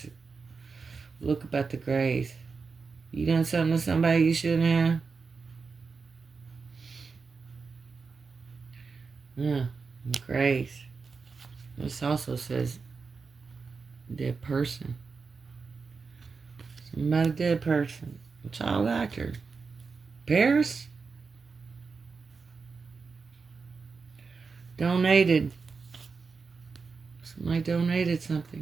look about the Grays. You done something to somebody you shouldn't have? Yeah, the Grays. This also says dead person. Something about a dead person. A child actor. Paris? Donated. Somebody donated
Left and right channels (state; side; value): quieter; left; 4.9 dB